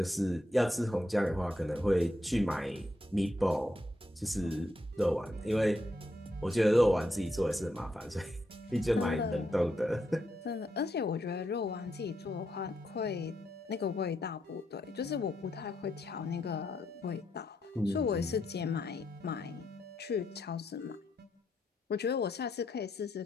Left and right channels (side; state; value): both; normal; correlation 0.80